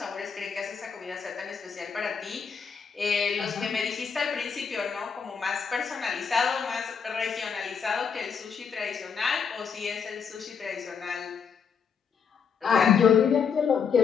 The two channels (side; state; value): right; quieter; 6.4 dB